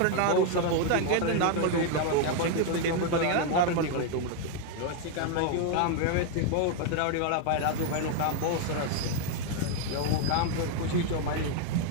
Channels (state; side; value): different; both; correlation 0.00